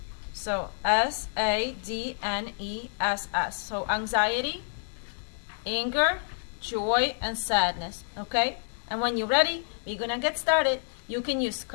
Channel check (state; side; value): silent; right; digital silence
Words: So S-A-D-N-E-S-S. So anxiety, anger, joy, and sadness. Okay, and when you're ready, we're gonna get started. You can use